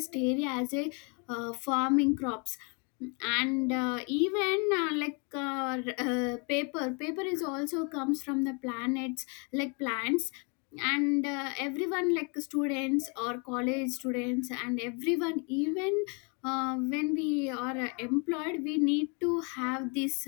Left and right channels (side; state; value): right; quieter; 34.5 dB